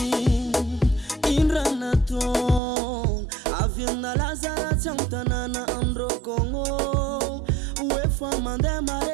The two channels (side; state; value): left; drops out; at 2.6 s